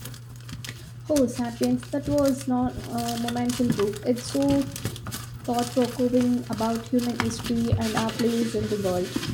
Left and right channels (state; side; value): identical; both; correlation 1.00